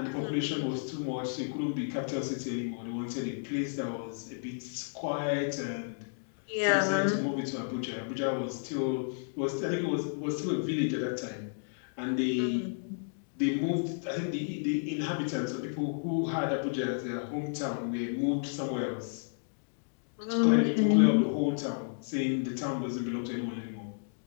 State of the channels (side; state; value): right; silent; digital silence